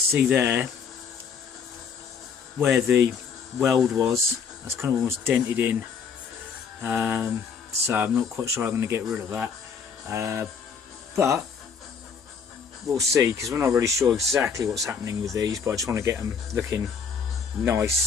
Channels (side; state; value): right; quieter; 6.2 dB